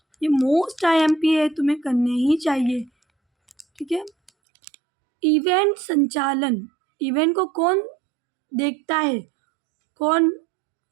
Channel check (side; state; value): left; drops out; at 4.3 s